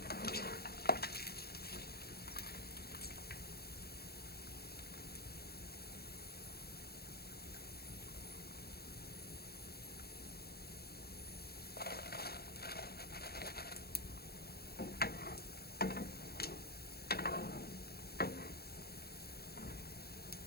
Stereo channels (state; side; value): late; right; 0.46 ms